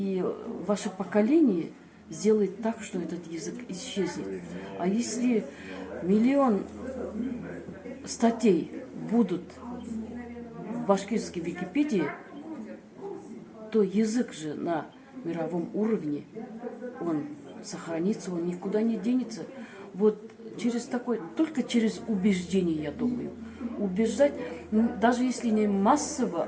ваше поколение сделает так, что этот язык исчезнет. А если 1 миллион статей будут в башкирской Википедии, то язык же на мировом уровне, он сохранится, он никуда не денется. Вот только через убеждение, я думаю. Убеждать, даже если не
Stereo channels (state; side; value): identical; both; correlation 1.00